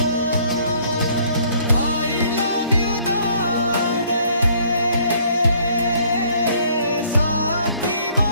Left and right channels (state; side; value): inverted; both; correlation -0.61